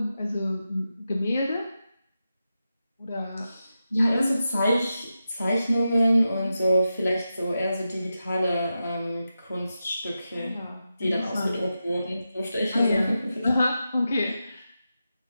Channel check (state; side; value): inverted; both; correlation -0.90